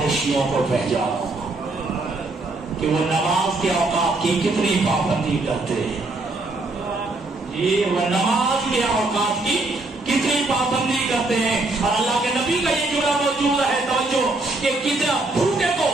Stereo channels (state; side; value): quieter; left; 3.1 dB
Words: شیعوں کو پہچانو کہ وہ نماز کے اوقات کی کتنی پابندی کرتے ہیں. یہ وہ نماز کے اوقات کی کتنی پابندی کرتے ہیں. اور اللہ کے نبی کا یہ جملہ موجود ہے, توجہ, کہ کتنا بھوکے کو